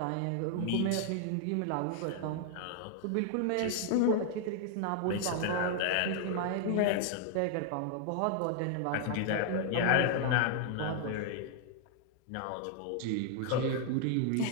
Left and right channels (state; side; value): different; both; correlation 0.00